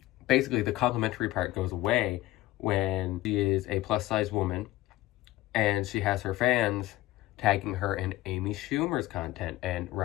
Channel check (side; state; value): right; quieter; 17.0 dB